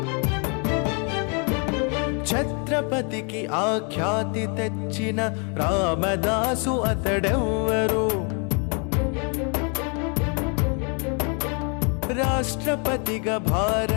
ఛత్రపతికి ఆఖ్యాతి తెచ్చిన రామదాసు అతడెవ్వరు, రాష్ట్రపతిగా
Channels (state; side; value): quieter; right; 36.6 dB